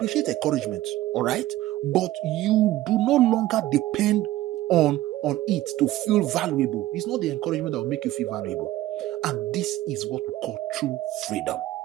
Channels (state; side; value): quieter; left; 15.6 dB